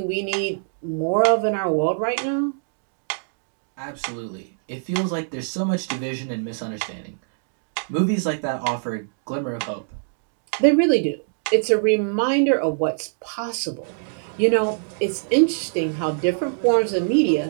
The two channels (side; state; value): left; silent; digital silence